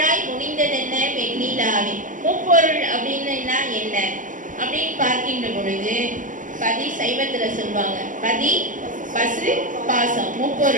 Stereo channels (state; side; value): late; left; 0.38 ms